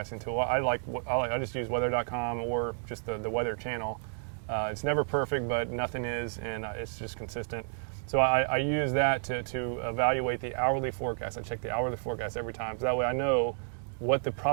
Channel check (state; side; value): silent; left; digital silence